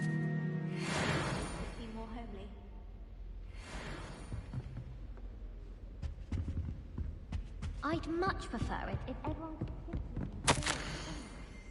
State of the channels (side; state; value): both; identical; correlation 1.00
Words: More homely. I'd much prefer it if everyone could simply